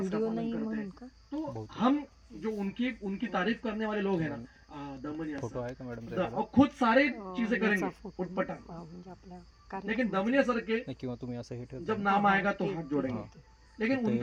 का पालन करते हैं। तो हम जो उनकी तारीफ करने वाले लोग हैं ना, दमनिया सर, और खुद सारे चीजें करेंगे उठपटांग, लेकिन दमनिया सर के जब नाम आएगा तो हाथ जोड़ेंगे, लेकिन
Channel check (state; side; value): identical; both; correlation 1.00